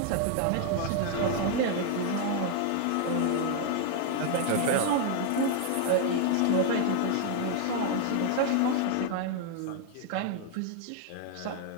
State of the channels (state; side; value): different; both; correlation 0.00